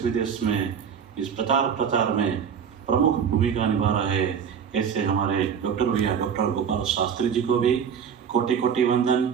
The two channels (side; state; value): left; quieter; 7.5 dB